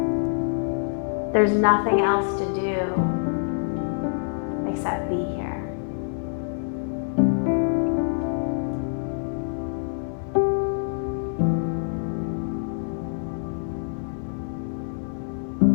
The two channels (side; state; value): right; silent; digital silence